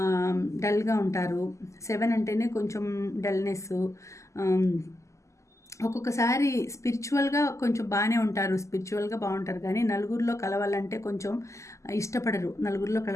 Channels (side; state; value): right; late; 0.15 ms